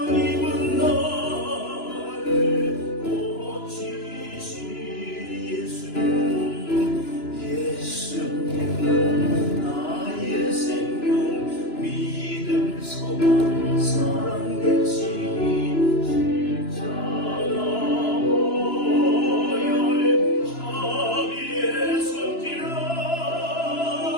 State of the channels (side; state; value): right; late; 2.9 ms